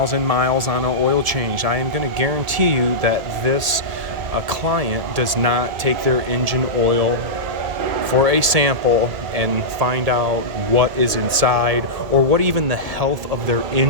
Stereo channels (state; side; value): late; left; 1.8 ms